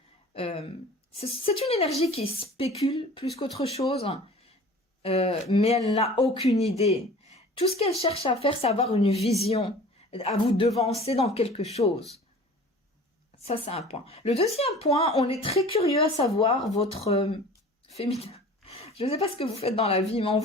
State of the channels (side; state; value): both; normal; correlation 0.44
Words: C'est une énergie qui spécule plus qu'autre chose, mais elle n'a aucune idée. Tout ce qu'elle cherche à faire, c'est avoir une vision, à vous devancer dans quelque chose. Ça, c'est un point. Le deuxième point, on est très curieux à savoir votre féminin. Je ne sais pas ce que vous faites dans la vie, mais on